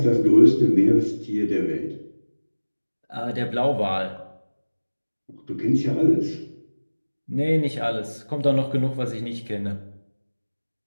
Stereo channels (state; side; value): inverted; both; correlation -1.00